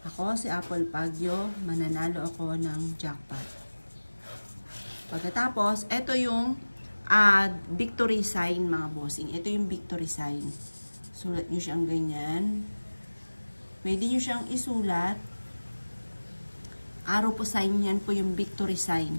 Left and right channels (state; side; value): inverted; both; correlation -1.00